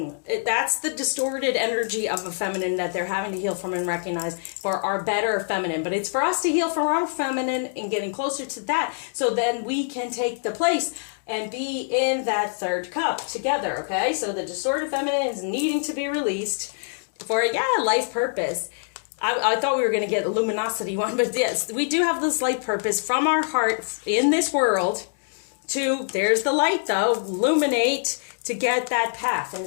the distorted energy of a feminine that they're having to heal from and recognize for our better feminine. But it's for us to heal from our feminine and getting closer to that, so then we can take the place and be in that third cup together, okay? So the distorted feminine is needing to be released for, life purpose. I thought we were going to get a luminosity one, but yes, we do have this light purpose from our heart in this world to, there's the light though, illuminate, to get that path. And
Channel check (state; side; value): silent; right; digital silence